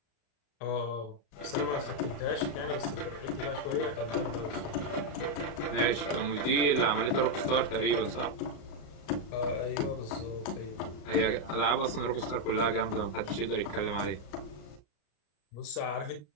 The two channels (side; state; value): right; late; 34 ms